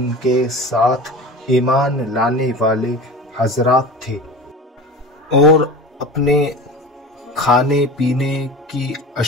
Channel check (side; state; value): both; normal; correlation 0.34